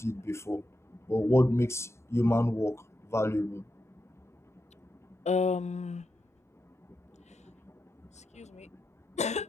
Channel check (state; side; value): normal; both; correlation 0.87